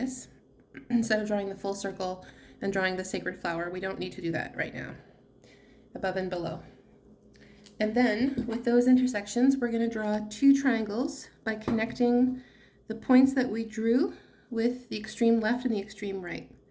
Instead of drawing the full circle and drawing the sacred flower, we don't need to do that right now, above and below. And then with those intersections, we're going to draw two triangles by connecting the points that we drew with the extreme left and the extreme right.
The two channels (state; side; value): identical; both; correlation 1.00